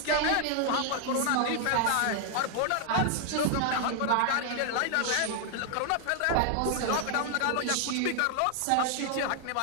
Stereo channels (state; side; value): different; both; correlation 0.00